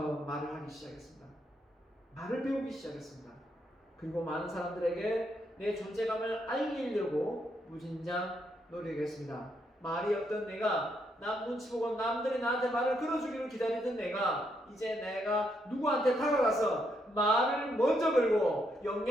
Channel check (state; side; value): normal; both; correlation 0.77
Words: 말을 하기 시작했습니다. 말을 배우기 시작했습니다. 그리고 많은 사람들에게 내 존재감을 알리려고 무진장 노력했습니다. 말이 없던 내가, 남 눈치 보고 남들이 나한테 말을 걸어주기를 기다리던 내가, 이제 내가 누구한테 다가가서 말을 먼저 걸고